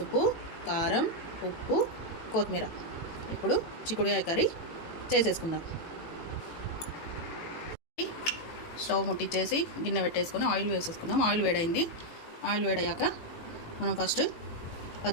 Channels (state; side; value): late; right; 18 ms